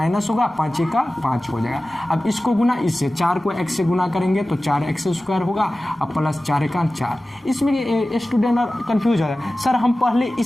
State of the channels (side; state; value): both; normal; correlation 0.96